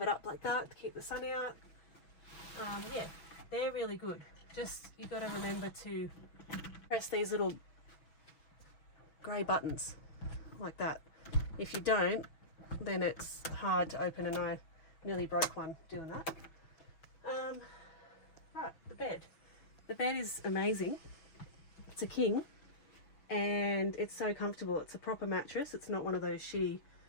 it up like that to keep the sun out. Yeah, they're really good. Just, you've got to remember to press these little grey buttons like that. If you don't, then it's hard to open, and I nearly broke one doing that. Right, the bed. The bed is amazing. It's a king, and it's so comfortable. It's a proper mattress. It's not one of those shitty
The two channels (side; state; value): right; late; 6.1 ms